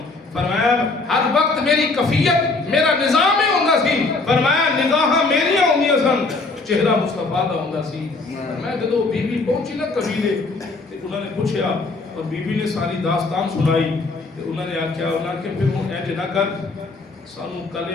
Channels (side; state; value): right; quieter; 3.6 dB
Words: فرمایا ہر وقت میری کفیت میرا نظام ہی ہوندا سی. فرمایا نگاہاں میریاں ہوندیاں سن, چہرہ مصطفیٰ دا ہوندا سی. فرمایا جدو بی بی پہنچی نا قبیلے تے انہوں نے پوچھیا اور بی بی نے ساری داستان سنائی تے انہوں نے آکھیا کہ پھر ہوں اے نہ کر سانو